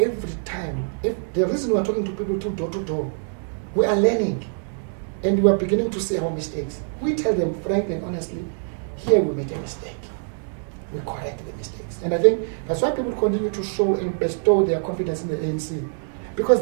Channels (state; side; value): silent; left; 63 dB below the other